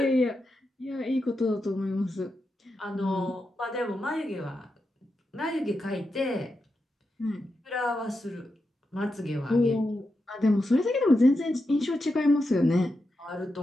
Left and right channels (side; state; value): both; normal; correlation 0.87